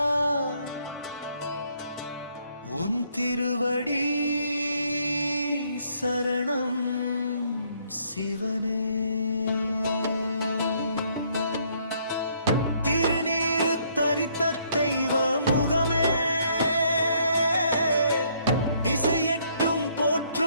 உன் திருவடி சரணம் சிவனே. திருநீரு தரித்த தெய்வ முகமே, திசையெட்டும்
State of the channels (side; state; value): both; inverted; correlation -0.67